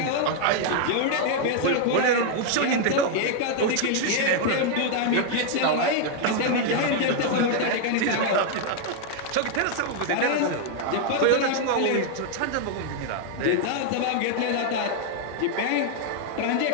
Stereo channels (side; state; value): both; different; correlation 0.00